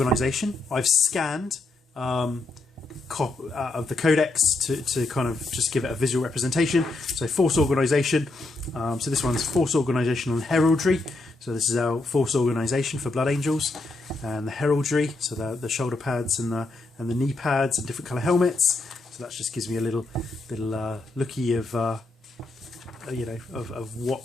I've scanned of the Codex to kind of just give it a visual representation. So force organisation. So this one's force organisation on heraldry. So this is our force organisation for Blood Angels, and the heraldry. So the shoulder pads and the knee pads and different colour helmets. So that just gives me a little looky of you know, of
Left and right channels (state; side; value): quieter; right; 3.1 dB